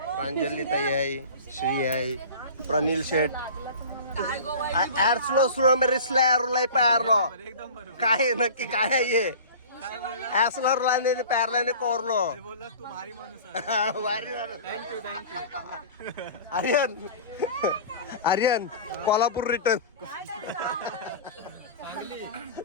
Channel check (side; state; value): both; inverted; correlation -0.38